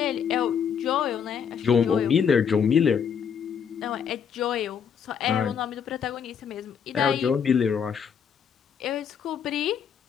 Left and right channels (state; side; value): quieter; right; 7.3 dB